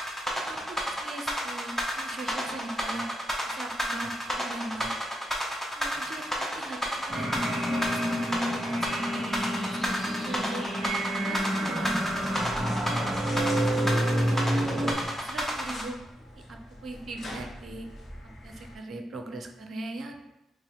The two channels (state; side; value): normal; both; correlation 0.84